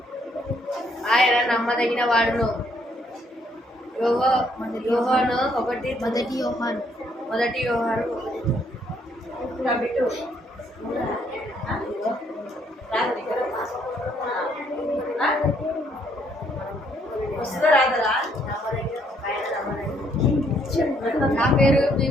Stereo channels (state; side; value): normal; both; correlation 0.69